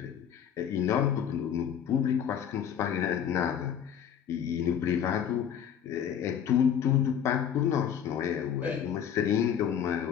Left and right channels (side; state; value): right; quieter; 8.7 dB